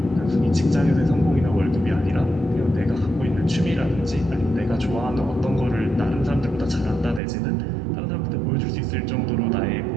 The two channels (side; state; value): left; drops out; at 7.2 s